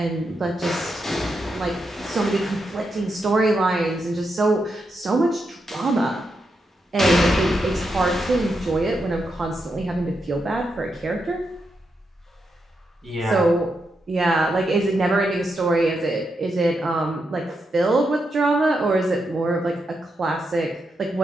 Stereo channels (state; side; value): normal; both; correlation 0.84